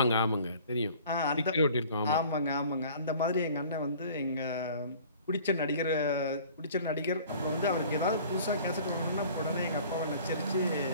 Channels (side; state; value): both; inverted; correlation -0.49